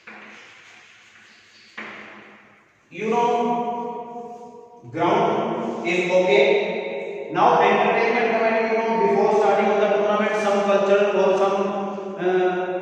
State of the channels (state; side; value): identical; both; correlation 1.00